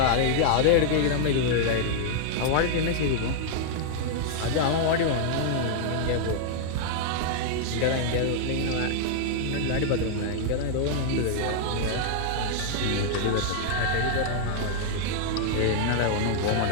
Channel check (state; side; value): different; both; correlation -0.01